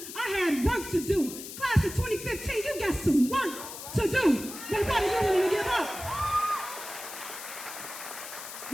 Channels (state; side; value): noise; left; hiss, 11 dB below the sound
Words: I had work to do. Class of 2015, you got some work to do. But what are you willing to give up?